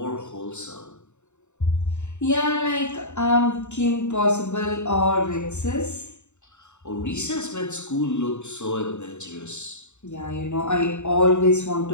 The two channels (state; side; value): late; right; 0.83 ms